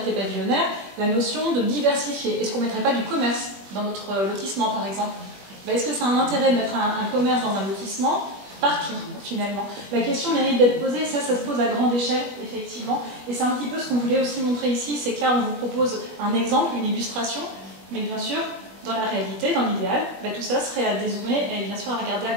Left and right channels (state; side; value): late; left; 21 ms